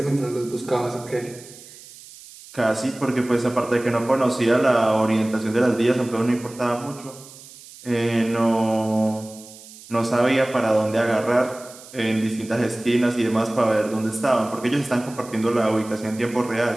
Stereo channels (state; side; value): noise; right; hiss, 19 dB below the sound